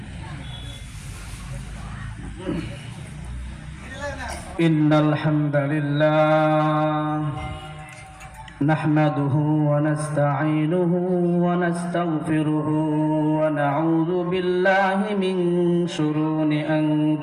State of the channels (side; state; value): both; identical; correlation 1.00